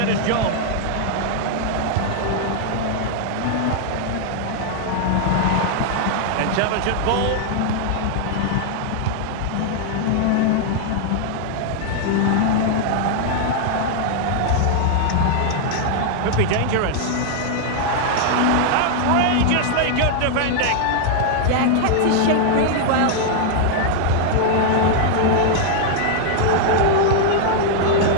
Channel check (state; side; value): different; both; correlation -0.01